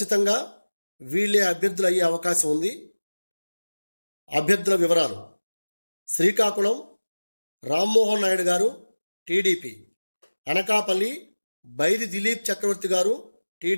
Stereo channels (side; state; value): both; inverted; correlation -1.00